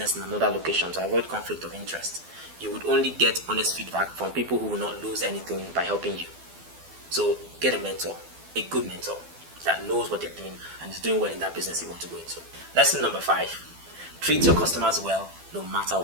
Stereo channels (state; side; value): late; left; 12 ms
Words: in another location to avoid conflict of interest. You would only get honest feedback from people who will not lose anything by helping you. So get a mentor, a good mentor that knows what they're doing and is doing well in that business you want to go into. Lesson number 5, treat your customers well no matter